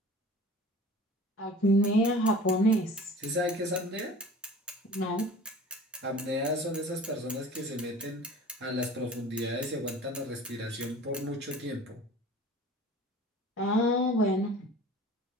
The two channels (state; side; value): normal; both; correlation 0.43